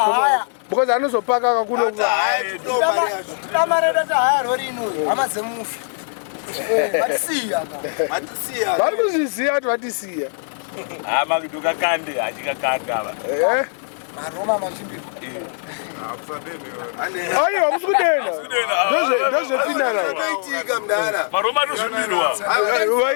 Because anozopaka kakuno. Tamareda tahaya rori ino hama dzemufi. Vatisiya. Vari kuzviziva kuti vatisiya. Makidoka kande achikakanda ava. Maroma machimbirwa. Aiwa musikudenda. Ndozvepinda nayo. Maroma anozvimbirwa.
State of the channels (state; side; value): silent; right; digital silence